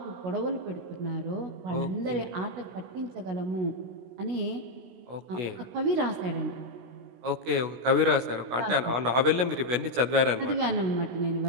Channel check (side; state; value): left; late; 16 ms